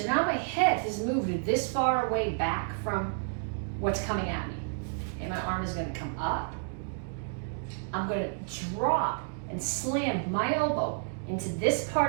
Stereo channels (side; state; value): left; silent; digital silence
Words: now my head has moved this far away back from what's coming at me. Okay, my arm is gonna come up. I'm gonna drop and slam my elbow into this